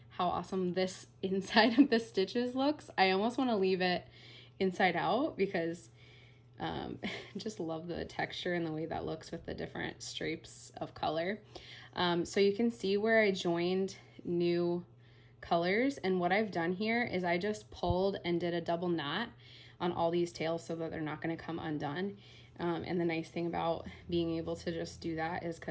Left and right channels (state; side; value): identical; both; correlation 1.00